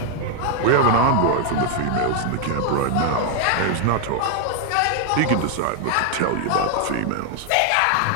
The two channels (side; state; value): both; different; correlation 0.01